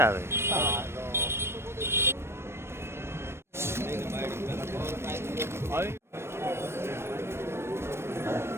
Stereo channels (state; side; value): late; left; 0.12 ms